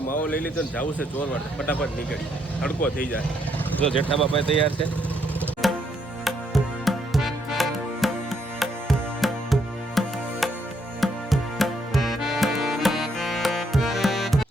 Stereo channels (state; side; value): normal; both; correlation 0.73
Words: માવો લઈ લીધો ને જવું છે ચોરવાડ. ફટાફટ નીકળી, તડકો થઈ જાય. જો જેઠાબા ભાઈ તૈયાર છે.